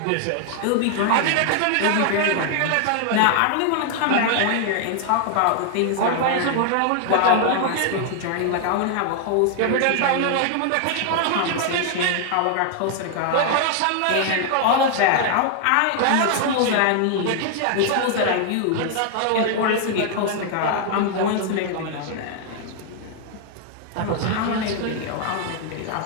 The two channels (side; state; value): both; different; correlation 0.00